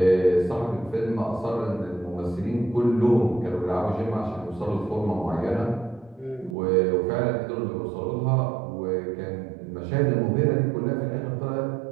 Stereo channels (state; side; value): drops out; left; at 6.6 s